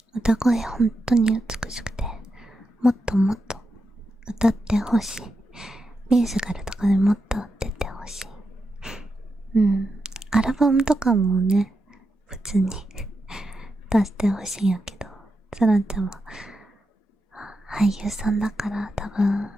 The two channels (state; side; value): normal; both; correlation 0.87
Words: 歌声本当に美しくて、もっともっと歌ってほしい。ミュージカルとかでもっと出てほしい。アルバムとかもね、普通に出してほしいんやけど、さなちゃんは俳優さんだから多分